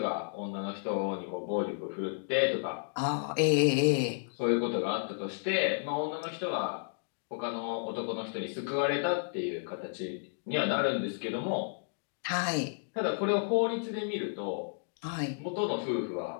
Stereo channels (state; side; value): silent; right; digital silence